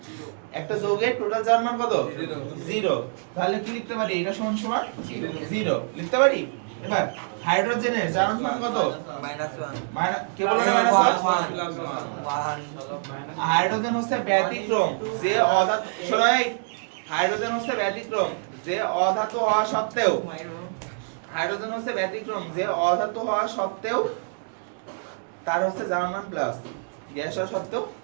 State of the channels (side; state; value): left; silent; digital silence